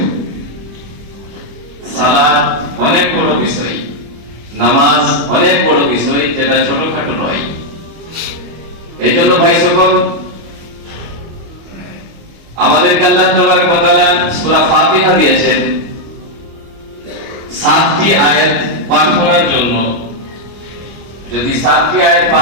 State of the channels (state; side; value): late; left; 25 ms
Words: সালাত অনেক বড় বিষয়, নামাজ অনেক বড় বিষয়, যেটা ছোটখাটো নয়। এই জন্য ভাই সকল, আমাদেরকে আল্লাহ তাবারক ওয়া তাআলা সূরা ফাতিহা দিয়েছেন 7টি আয়াত পাঠ করার জন্য। যদি 7টি আয়াত